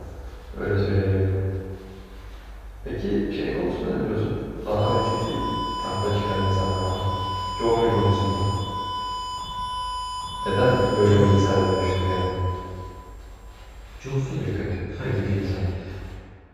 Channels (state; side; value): identical; both; correlation 1.00